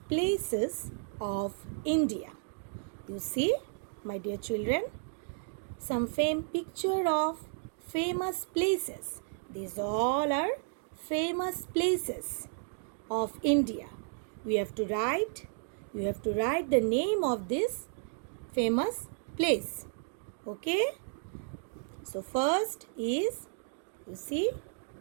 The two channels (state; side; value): silent; left; 56 dB below the other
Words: places of India. You see, my dear children, some picture of famous places. These all are famous places of India. You have to write the name of this famous place. Okay? So first is, you see,